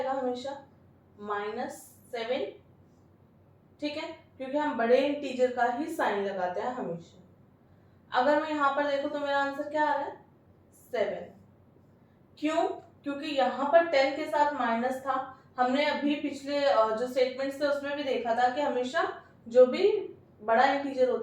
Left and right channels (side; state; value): both; identical; correlation 1.00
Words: हमेशा -7. ठीक है, क्योंकि हम बड़े इंटीजर का ही साइन लगाते हैं हमेशा. अगर मैं यहाँ पर देखूं तो मेरा आंसर क्या आ रहा है? 7. क्यों? क्योंकि यहाँ पर 10 के साथ माइनस था. हमने अभी पिछले जो स्टेटमेंट्स थे उसमें भी देखा था कि हमेशा जो भी बड़ा इंटीजर